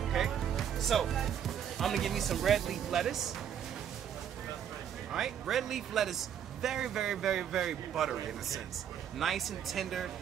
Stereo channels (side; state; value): left; quieter; 9.1 dB